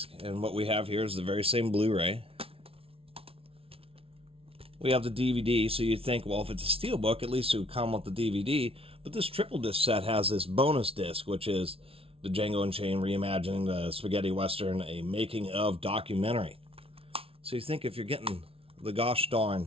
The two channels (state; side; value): late; left; 0.27 ms